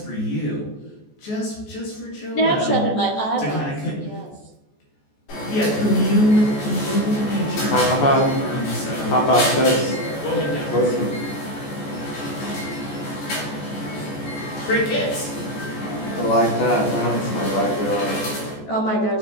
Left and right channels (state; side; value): late; right; 14 ms